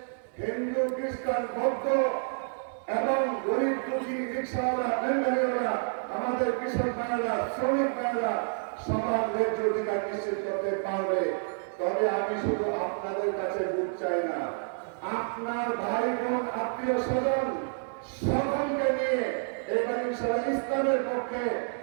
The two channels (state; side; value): silent; left; digital silence